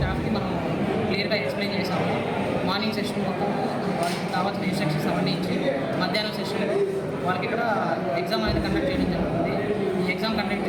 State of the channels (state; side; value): identical; both; correlation 1.00